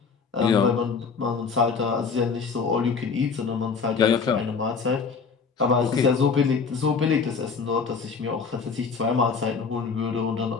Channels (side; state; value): right; quieter; 5.3 dB